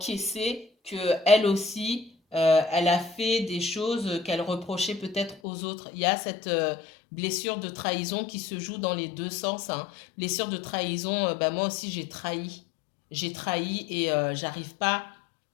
qu'elle aussi... elle a fait des choses qu'elle reprochait peut-être aux autres. Il y a cette blessure de trahison qui se joue dans les deux sens. Hein. Blessure de trahison, bah moi aussi j'ai trahi. J'ai trahi et j'arrive pas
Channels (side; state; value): right; drops out; at 5.4 s